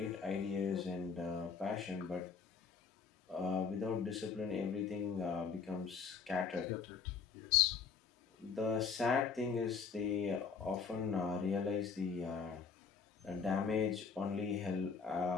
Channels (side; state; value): right; quieter; 5.8 dB